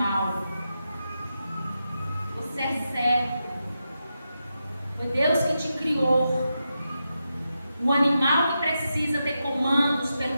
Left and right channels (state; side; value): inverted; both; correlation -0.88